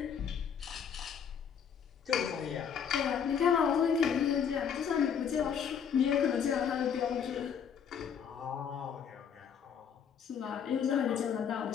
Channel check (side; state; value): right; quieter; 7.5 dB